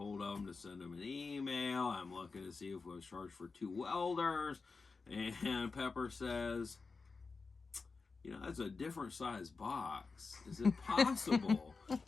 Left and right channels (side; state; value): right; quieter; 4.4 dB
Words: of them to send them an email. I'm looking to see if we was charged for 2 welders. And Pepper says, that's a different size box. Is it possible?